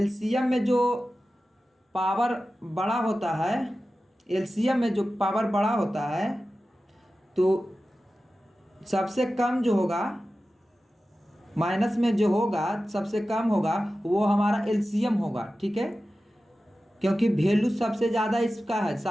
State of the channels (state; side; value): normal; both; correlation 0.94